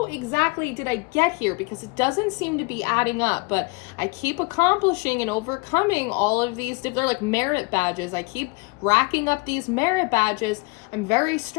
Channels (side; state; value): right; quieter; 28.8 dB